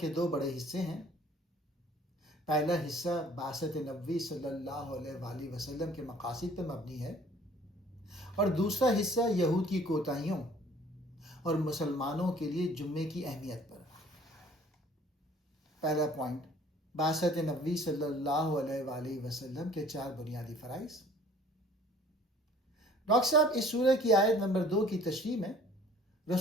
دو بڑے حصے ہیں۔ پہلا حصہ بعثت نبوی صلی اللہ علیہ وآلہ وسلم کے مقاصد پر مبنی ہے اور دوسرا حصہ یہود کی کوتاہیوں اور مسلمانوں کے لیے جمعے کی اہمیت پر۔ پہلا پوائنٹ، بعثت نبوی صلی اللہ علیہ وآلہ وسلم کے 4 بنیادی فرائض۔ ڈاکٹر صاحب اس سورہ کی آیت نمبر 2 کی تشریح میں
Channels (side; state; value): both; normal; correlation 0.53